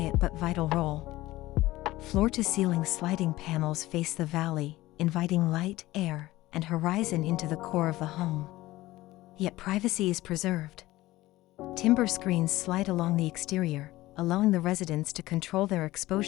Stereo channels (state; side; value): quieter; right; 17.6 dB